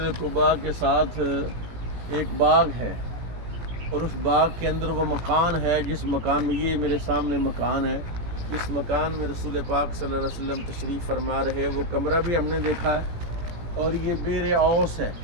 قباء کے ساتھ ایک باغ ہے، اور اس باغ کے اندر وہ مکان ہے جس مکان میں، یہ میرے سامنے مکان ہے، جس مکان میں رسول پاک صلی اللہ علیہ وسلم تشریف فرما رہے، وہ کمرہ بھی ہم نے دیکھا ہے، اور یہ بیر اوس ہے،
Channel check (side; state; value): left; late; 18 ms